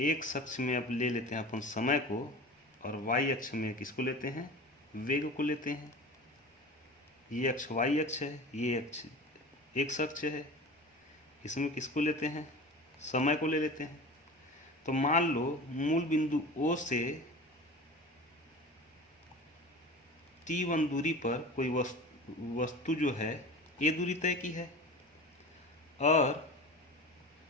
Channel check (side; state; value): both; normal; correlation 0.35